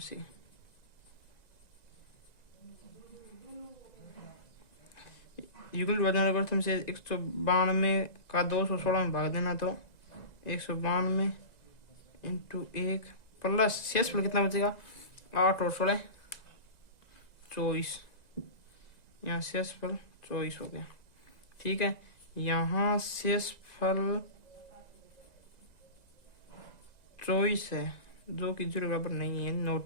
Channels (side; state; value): right; late; 1.9 ms